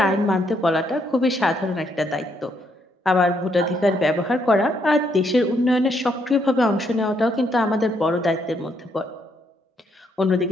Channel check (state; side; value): normal; both; correlation 0.74